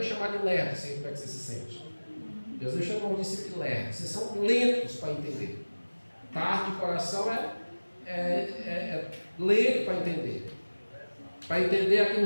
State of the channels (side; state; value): both; inverted; correlation -1.00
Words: é chamar de lerdo? Assim, como é que você se sente? Jesus chamou de discípulo de lerdo. Vocês são lentos para entender. Tardo de coração é lento para entender. Para entender aqui